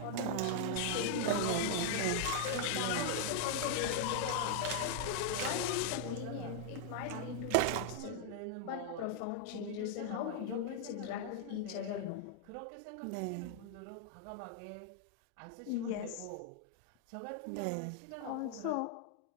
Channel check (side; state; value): both; different; correlation 0.00